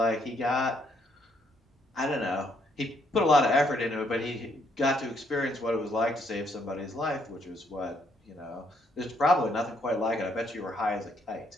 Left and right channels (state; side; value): normal; both; correlation 0.71